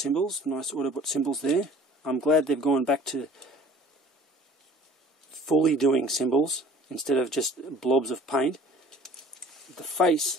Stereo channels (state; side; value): normal; both; correlation 0.49